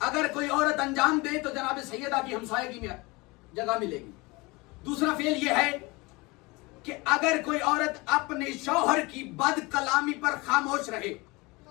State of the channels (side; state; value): right; quieter; 24.5 dB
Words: اگر کوئی عورت انجام دے تو جناب سیدہ کی ہمسائیگی میں جگہ ملے گی. دوسرا فعل یہ ہے کہ اگر کوئی عورت اپنے شوہر کی بد کلامی پر خاموش رہے.